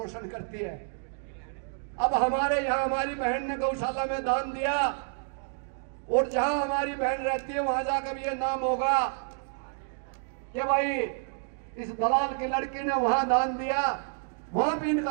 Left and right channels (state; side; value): silent; left; digital silence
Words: करती है। अब हमारे यहाँ हमारी बहन ने गौशाला में दान दिया, और जहां हमारी बहन रहती है वहां जाकर भी ये नाम होगा कि भाई इस दलाल की लड़की ने वहां दान दिया, वहां भी